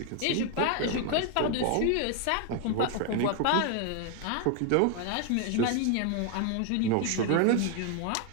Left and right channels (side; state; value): both; different; correlation 0.00